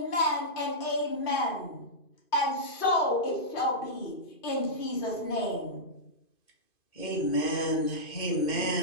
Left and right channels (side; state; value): right; late; 2.5 ms